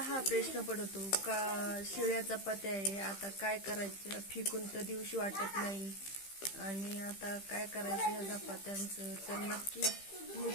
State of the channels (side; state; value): right; late; 15 ms